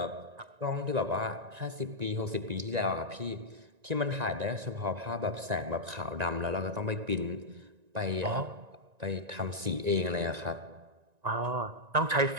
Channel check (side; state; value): left; late; 1.9 ms